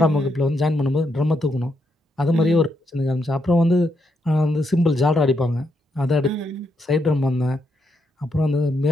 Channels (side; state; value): both; normal; correlation 0.79